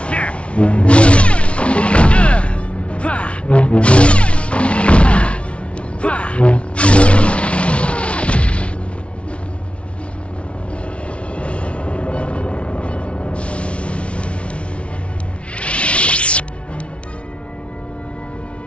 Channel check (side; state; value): right; late; 0.061 ms